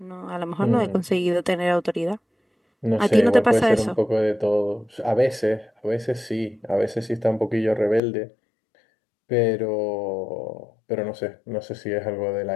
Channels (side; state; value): right; drops out; at 8.0 s